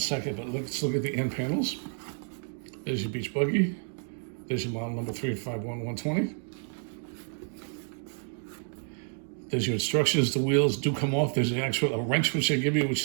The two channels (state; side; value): silent; left; 58 dB below the other